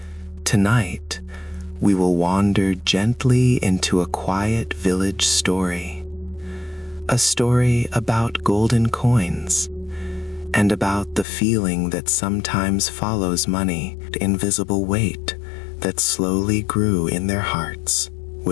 Tonight, we will wander gently into a quiet village story. A story about golden coins, and about the feeling that sometimes follows money, the invisible weight that slowly grew in their hearts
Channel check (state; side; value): drops out; right; at 11.2 s